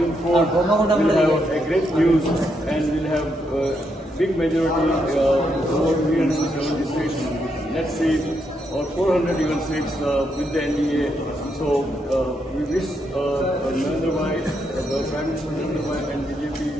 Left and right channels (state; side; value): normal; both; correlation 0.79